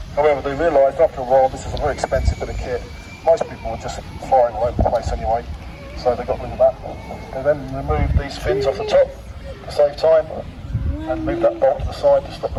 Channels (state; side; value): identical; both; correlation 1.00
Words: However, they realised after a while this is a very expensive bit of kit. Most people were just firing all over the place anyway, so they got rid of that. They then removed these fins off the top to save time and moved that bolt to the side to stop